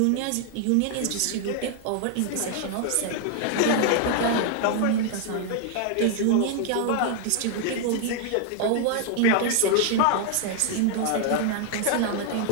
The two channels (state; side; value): different; both; correlation 0.00